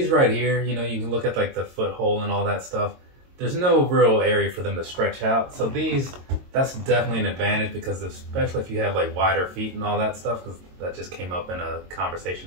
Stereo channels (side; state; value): left; late; 22 ms